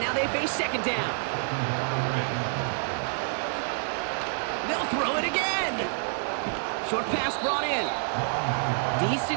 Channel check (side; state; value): left; silent; digital silence